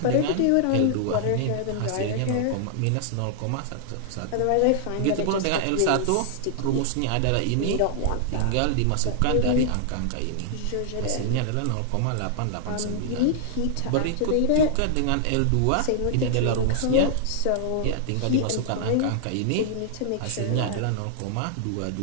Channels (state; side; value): different; both; correlation -0.01